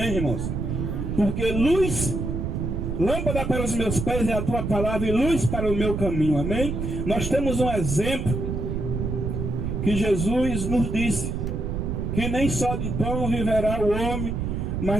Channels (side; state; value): right; noise; rumble, 2 dB below the sound